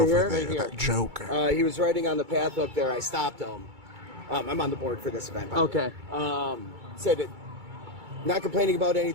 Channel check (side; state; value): left; late; 2.3 ms